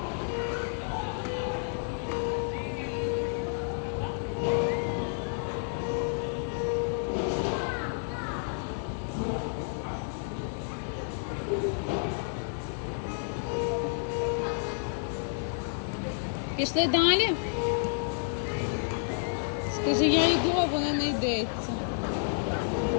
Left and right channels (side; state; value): right; silent; digital silence